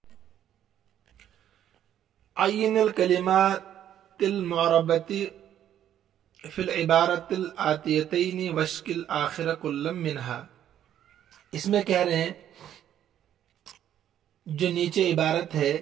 अय्यिनुल कलिमातिल मुअर्रबती फिल इबारतिल आतियतैनि वश्किल आखिर कुल्लम मिनहा। इसमें कह रहे हैं जो नीचे इबारत है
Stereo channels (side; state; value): left; quieter; 10.8 dB